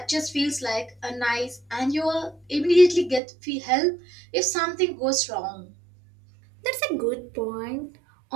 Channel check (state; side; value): drops out; left; at 3.2 s